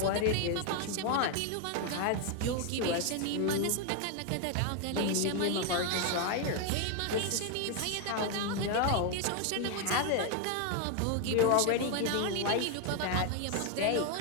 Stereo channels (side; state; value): both; different; correlation 0.01